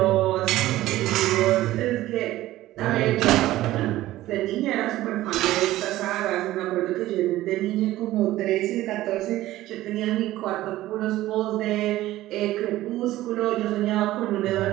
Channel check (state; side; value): quieter; left; 15.7 dB